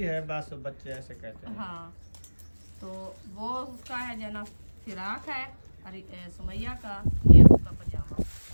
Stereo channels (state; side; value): inverted; both; correlation -1.00